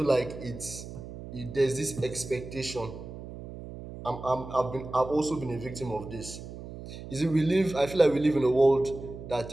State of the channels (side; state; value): right; noise; hum, 12 dB below the sound